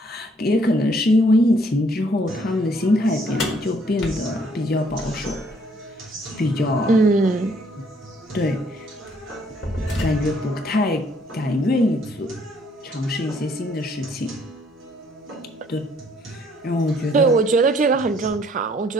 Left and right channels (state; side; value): normal; both; correlation 0.65